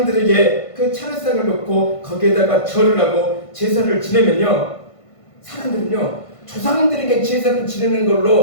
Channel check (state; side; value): late; right; 1.5 ms